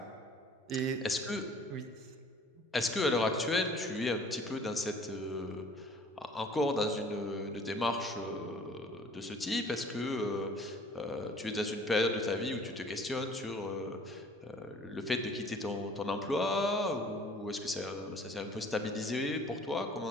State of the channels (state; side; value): normal; both; correlation 0.52